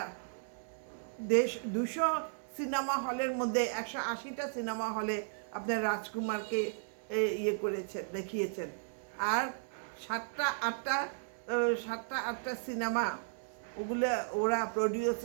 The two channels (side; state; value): left; silent; digital silence